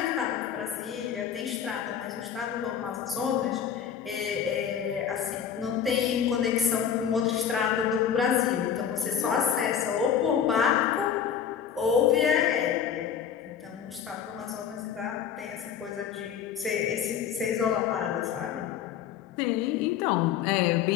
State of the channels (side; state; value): right; quieter; 8.4 dB